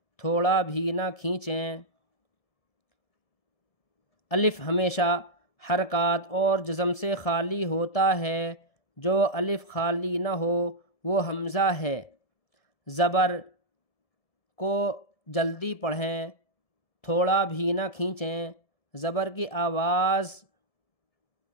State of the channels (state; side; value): late; right; 1.7 ms